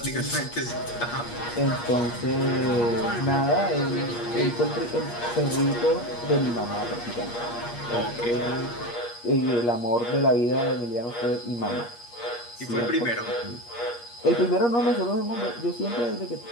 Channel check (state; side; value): late; right; 8.5 ms